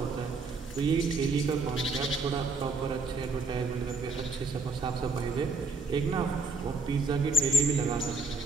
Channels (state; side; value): quieter; left; 3.6 dB